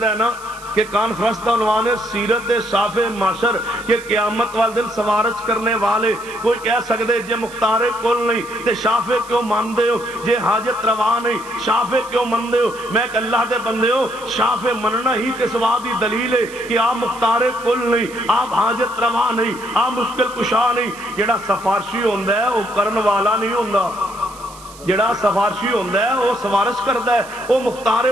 ہے نا کہ کانفرنس دا عنوان ہے سیرت صاف معاشر کہ قیامت والے دن سوارش کرنے والے کوئی کہہ سکتے جے مختار کل نہیں تے شافع کیوں ماندے ہو جے حاجت روا نہیں شافع کیوں ماندے ہو میں کہ اللہ دے بندے ہو شافع مننا ہی تے سوا دی دلیل ہے کہ آپ مختار کل نہیں آپ حاجت روا نہیں آپ مشکل کشا نہیں جڑا سفارشی ہوندا ہے وہ کرن والا نہیں ہوندا جڑا سفارشی ہوندا ہے وہ سفارش کردا ہے وہ مختار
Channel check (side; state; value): right; noise; hiss, 20 dB below the sound